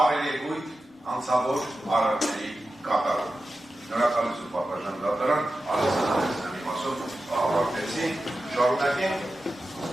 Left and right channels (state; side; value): normal; both; correlation 0.92